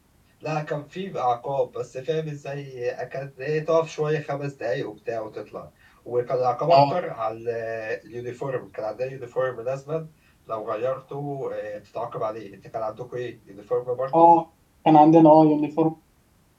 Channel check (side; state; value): both; identical; correlation 1.00